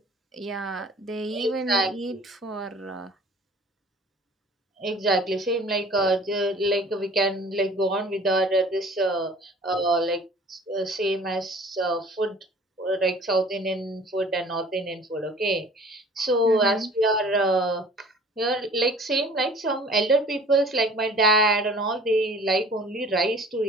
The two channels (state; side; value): normal; both; correlation 0.48